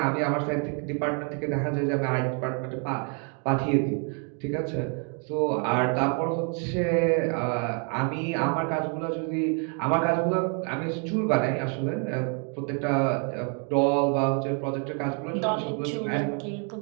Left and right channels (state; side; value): quieter; left; 39.7 dB